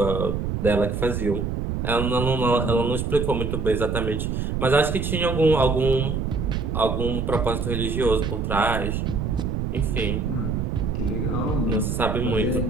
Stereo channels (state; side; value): noise; right; rumble, 1 dB below the sound